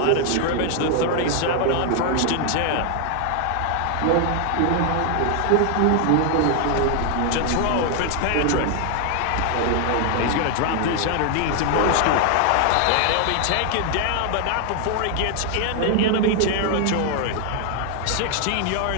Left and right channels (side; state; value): both; different; correlation 0.00